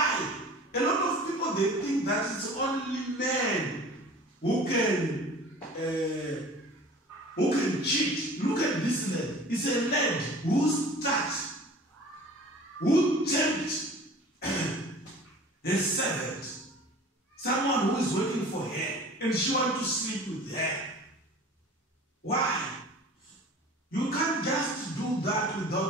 A lot of people, they think that it's only men who can cheat. Look at this lad. It's a lad who tempts a servant, someone who is waiting for her, and she wants to sleep with her. Why? You can't just do that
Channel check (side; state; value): both; normal; correlation 0.43